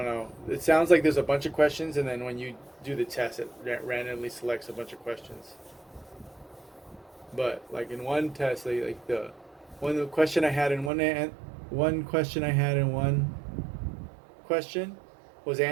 know. It sounds like there's a bunch of questions, and then when you do the test, it randomly selects a bunch of questions. But like in one test, like the one question I had in one question I had in one question was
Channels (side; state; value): left; drops out; at 10.9 s